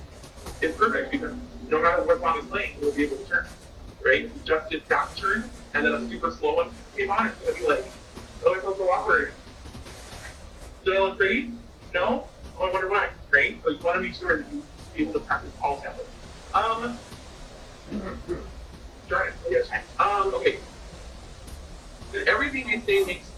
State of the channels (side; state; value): both; identical; correlation 1.00